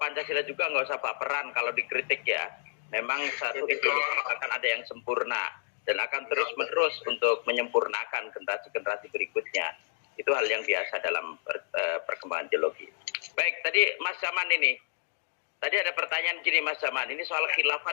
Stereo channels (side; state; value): right; silent; digital silence